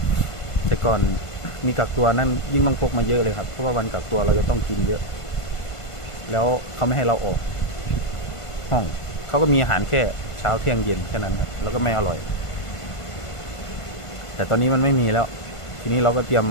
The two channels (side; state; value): right; late; 1.5 ms